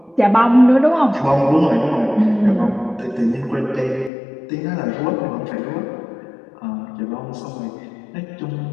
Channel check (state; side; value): drops out; right; at 4.1 s